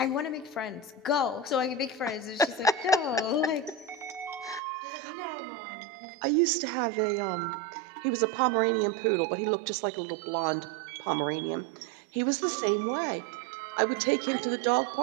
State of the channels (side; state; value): left; drops out; at 4.6 s